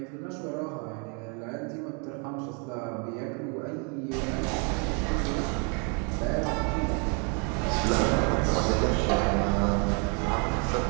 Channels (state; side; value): quieter; left; 35.8 dB